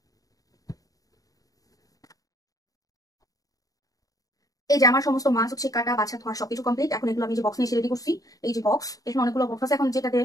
এই যে আমার সমস্ত মাছ হচ্ছে কাটা বাছা ধোয়া সবকিছু কমপ্লিট। এখন এগুলো আমি যে বক্স নিয়ে রেডি করছি, এই যে বক্স, এখানে অনেকগুলো বক্স আছে। এখন যেটাতে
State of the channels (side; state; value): right; late; 0.17 ms